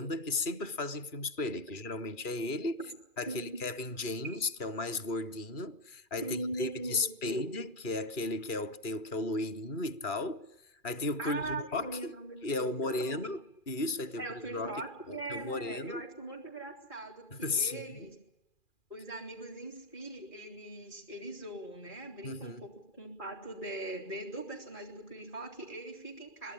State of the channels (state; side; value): late; right; 2.4 ms